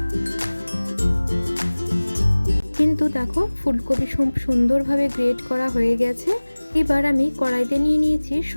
কিন্তু দেখো, ফুলকপি সুন্দরভাবে গ্রেট করা হয়ে গেছে। এবার আমি কড়াইতে নিয়ে নিয়েছি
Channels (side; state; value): both; inverted; correlation -1.00